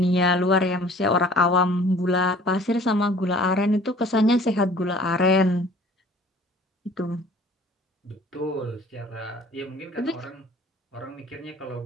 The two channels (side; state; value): both; normal; correlation 0.50